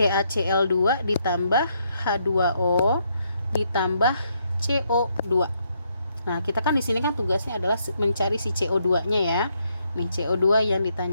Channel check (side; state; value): both; inverted; correlation -0.75